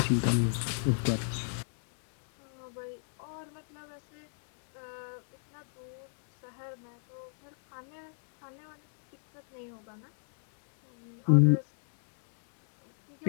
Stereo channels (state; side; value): silent; right; digital silence